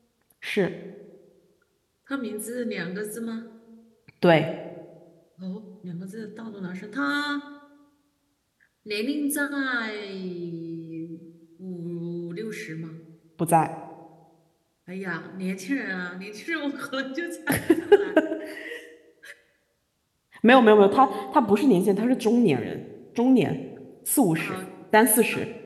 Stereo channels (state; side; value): identical; both; correlation 1.00